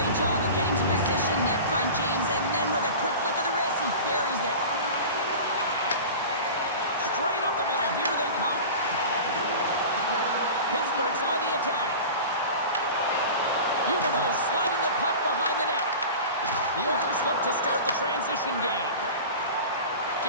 job of getting to position, net front, James, and then with a quick flick of the wrist, he buries it. Straight up the middle. Here they come. Pittsburgh's on the attack. Huberdeau sliding the puck behind the net. The Oilers look to start the transition game.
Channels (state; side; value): inverted; both; correlation -0.34